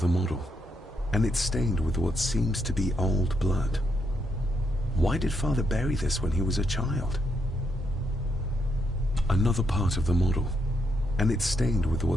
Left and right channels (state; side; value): normal; both; correlation 0.78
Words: model. And it's stained with what seems to be old blood. Why did Father bury this when he was a child? Another part of the model. And it's stained with